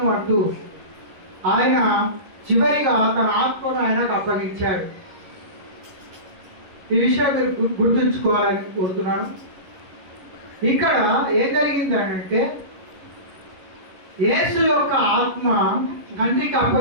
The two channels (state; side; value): late; left; 11 ms